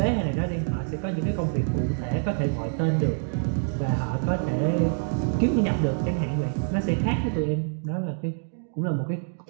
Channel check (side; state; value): left; silent; 61 dB below the other